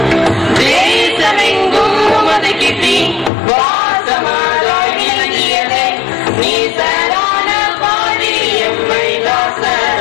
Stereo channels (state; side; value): drops out; right; at 3.3 s